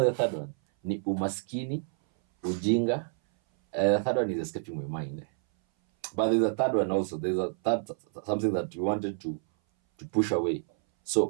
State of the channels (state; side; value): silent; left; 58 dB below the other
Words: the third one? Ni umaskini, ujinga. The third one is escaping my mind. But there's a third one also. There's a third something that we wanted to push away.